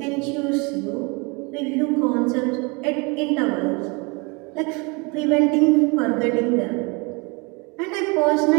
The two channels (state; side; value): quieter; left; 29.7 dB